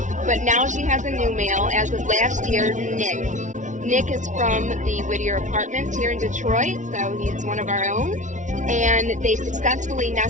but now she has a new male as of last year, Nick. Nick is from the Whittier Apartments here in Detroit, so he's one of our own. And they successfully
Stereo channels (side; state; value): left; late; 0.36 ms